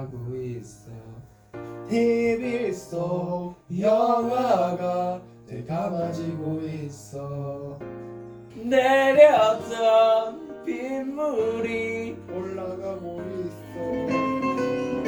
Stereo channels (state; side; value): identical; both; correlation 1.00